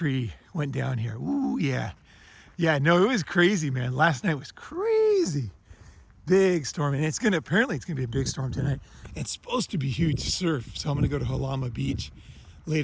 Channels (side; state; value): both; identical; correlation 1.00